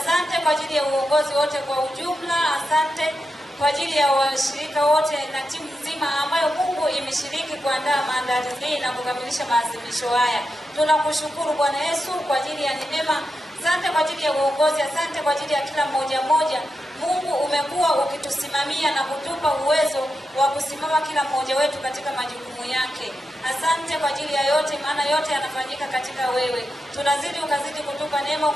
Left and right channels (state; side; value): normal; both; correlation 0.88